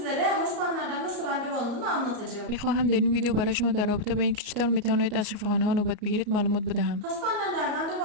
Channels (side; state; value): left; late; 34 ms